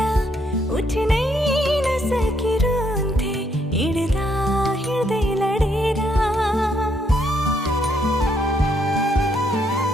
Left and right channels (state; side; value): normal; both; correlation 0.73